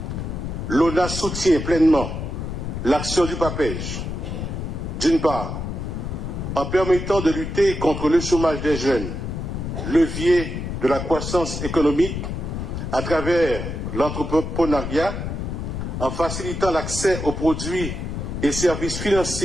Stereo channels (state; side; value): noise; left; rumble, 5 dB below the sound